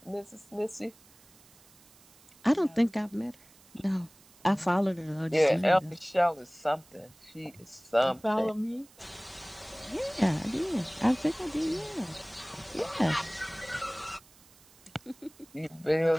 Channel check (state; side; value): noise; right; hiss, 26 dB below the sound